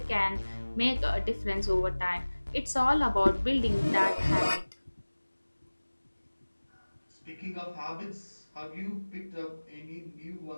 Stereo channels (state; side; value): inverted; both; correlation -1.00